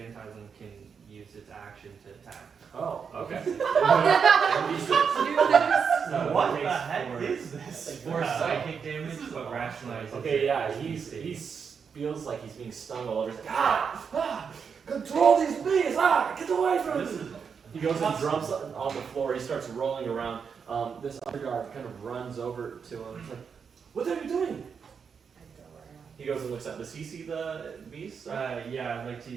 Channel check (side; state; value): left; quieter; 6.3 dB